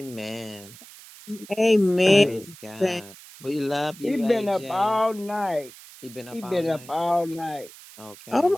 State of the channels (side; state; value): right; noise; hiss, 19 dB below the sound